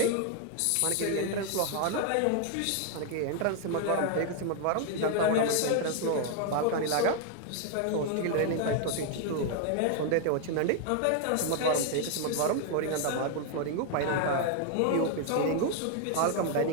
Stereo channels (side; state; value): both; different; correlation 0.00